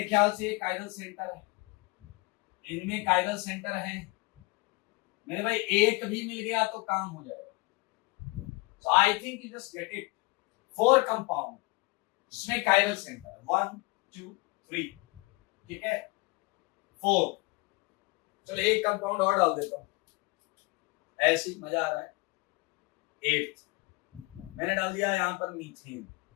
ख्याल से ये कायरल सेंटर है, इनमें कायरल सेंटर है मेरे भाई, एक भी मिल गया तो काम हो जाएगा। So I think you just get it, 4 compound जिसमें कायरल सेंटर 1 2 3, ठीक है, 4। चलो एक कंपाउंड और डाल देता हूं, ऐसे ही मजा आ रहा है। 8 मैंने डाल दिया यहाँ पर मीथेन,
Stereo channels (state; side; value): quieter; right; 25.2 dB